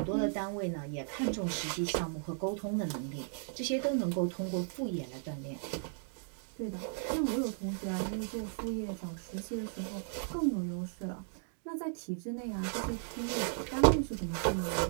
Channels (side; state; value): left; silent; digital silence